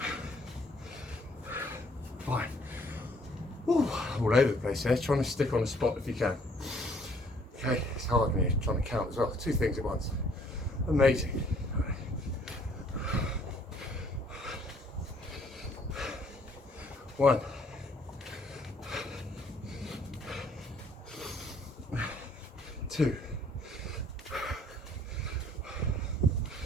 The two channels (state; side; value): normal; both; correlation 0.62